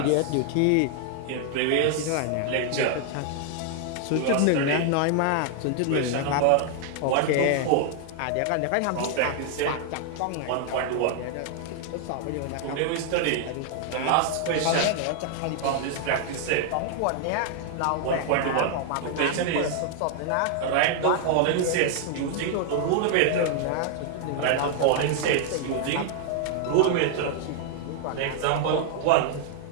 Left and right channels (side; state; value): both; different; correlation 0.00